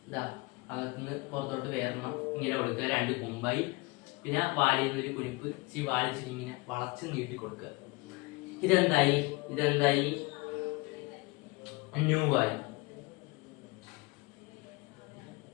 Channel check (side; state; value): right; quieter; 25.0 dB